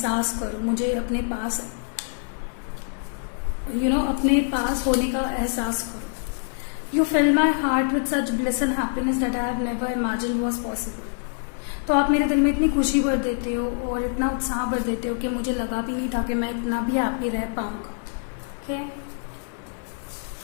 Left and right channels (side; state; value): right; silent; digital silence